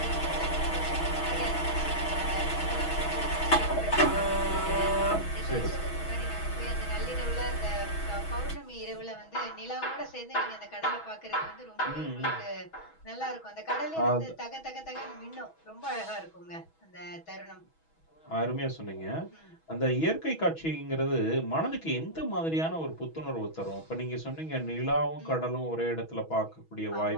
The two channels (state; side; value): late; right; 6.2 ms